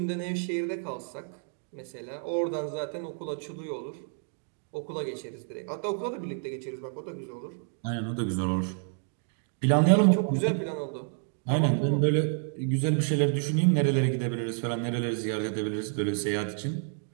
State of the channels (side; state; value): left; silent; 58 dB below the other